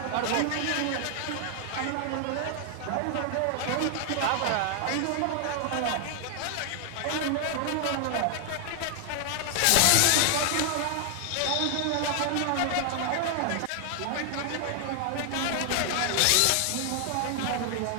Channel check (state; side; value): different; both; correlation 0.00